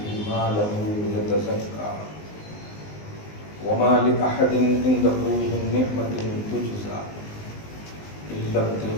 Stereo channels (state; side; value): late; right; 19 ms